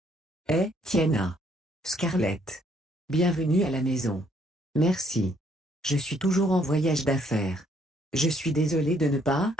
Tiana. Scarlett. Bienvenue à la maison. Merci. Je suis toujours en voyage d'affaires. Je suis désolé de ne pas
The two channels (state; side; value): normal; both; correlation 0.67